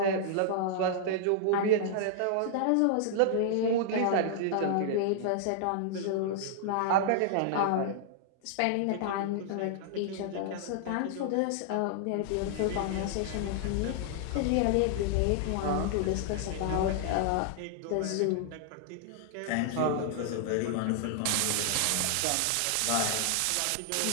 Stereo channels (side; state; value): both; different; correlation -0.01